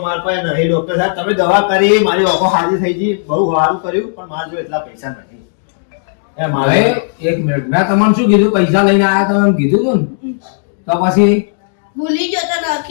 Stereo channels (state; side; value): silent; right; digital silence